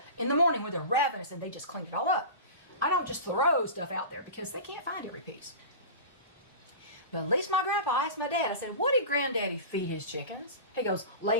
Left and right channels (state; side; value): inverted; both; correlation -0.31